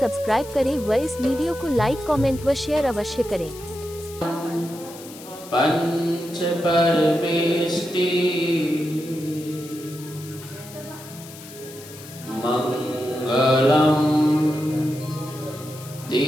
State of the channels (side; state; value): left; noise; hiss, 17 dB below the sound